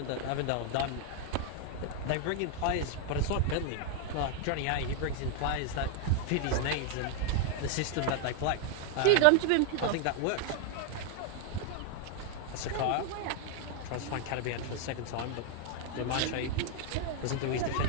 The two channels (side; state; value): both; different; correlation 0.00